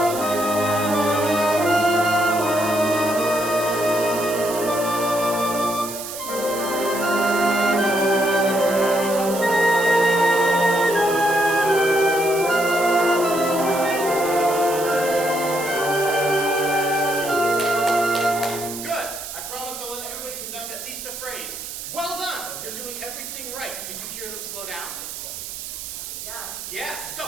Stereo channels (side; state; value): right; noise; hiss, 9 dB below the sound